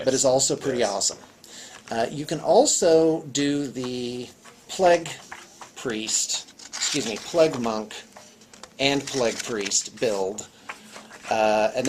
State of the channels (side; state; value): both; identical; correlation 1.00